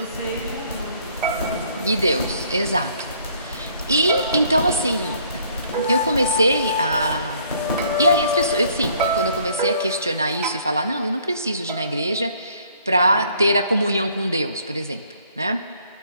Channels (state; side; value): inverted; both; correlation -0.62